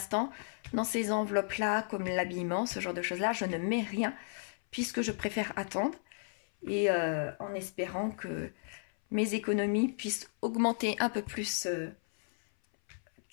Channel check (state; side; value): silent; right; 55 dB below the other